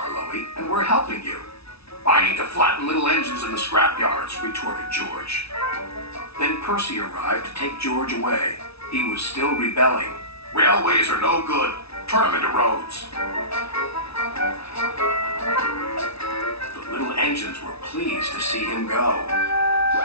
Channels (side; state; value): right; late; 0.78 ms